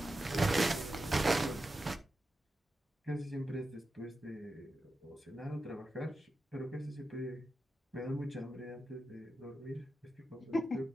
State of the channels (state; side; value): normal; both; correlation 0.90